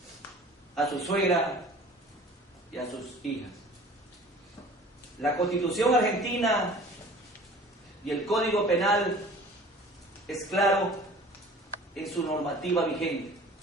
a su suegra y a sus hijas. La Constitución argentina y el Código Penal es claro en su normativa vigente.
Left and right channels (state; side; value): normal; both; correlation 0.45